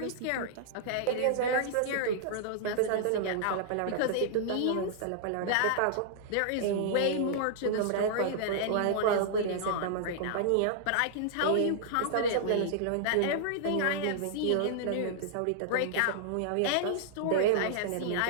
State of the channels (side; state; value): both; different; correlation -0.01